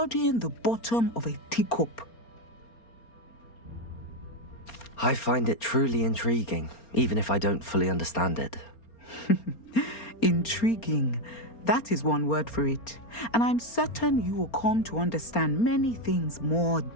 the bottom of a teacup. I find it truly intriguing, even if I don't fully understand it. Intriguing. That is one word for it. And I'm certain you will come to understand many things more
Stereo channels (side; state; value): right; late; 4.3 ms